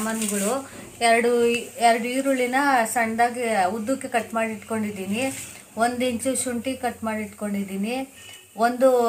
ಎರಡು ಈರುಳ್ಳಿನ ಸಣ್ಣದಾಗಿ ಉದ್ದಕ್ಕೆ ಕಟ್ ಮಾಡಿ ಇಟ್ಕೊಂಡಿದ್ದೀನಿ, 1 ಇಂಚು ಶುಂಠಿ ಕಟ್ ಮಾಡಿ ಇಟ್ಕೊಂಡಿದ್ದೀನಿ, 1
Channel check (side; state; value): both; identical; correlation 1.00